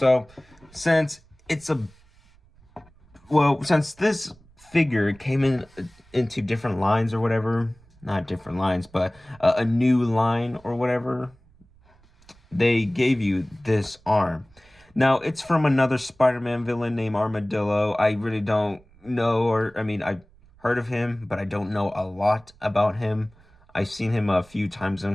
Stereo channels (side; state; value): right; noise; rumble, 29 dB below the sound